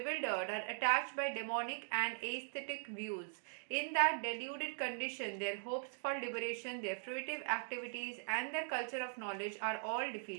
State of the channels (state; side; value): silent; left; digital silence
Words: are attached by demonic and aesthetic views. In that deluded condition, their hopes for liberation, their fruitive activities, and their culture of knowledge are all